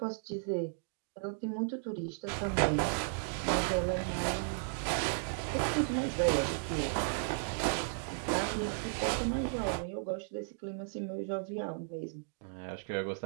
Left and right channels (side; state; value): left; silent; digital silence